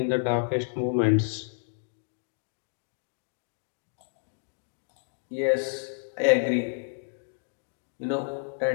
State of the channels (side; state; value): right; silent; digital silence